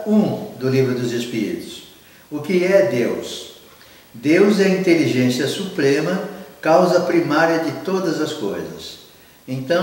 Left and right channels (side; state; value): both; identical; correlation 1.00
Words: 1 do Livro dos Espíritos. O que é Deus? Deus é a inteligência suprema, causa primária de todas as coisas.